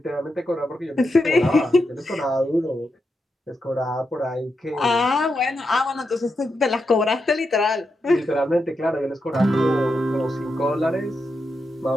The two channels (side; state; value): both; normal; correlation 0.85